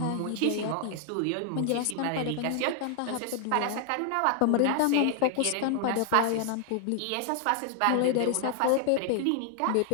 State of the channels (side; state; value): both; different; correlation 0.00